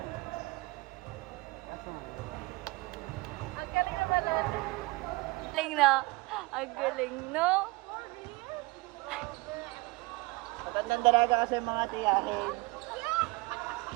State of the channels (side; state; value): left; quieter; 23.7 dB